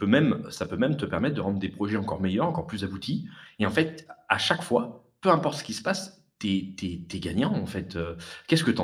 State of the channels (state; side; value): identical; both; correlation 1.00